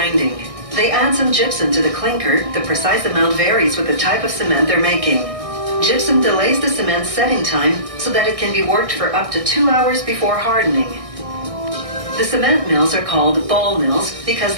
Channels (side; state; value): left; late; 1.6 ms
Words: They add some gypsum to the clinker. The precise amount varies with the type of cement they're making. Gypsum delays the cement's setting time so that it can be worked for up to 2 hours before hardening. The cement mills are called ball mills because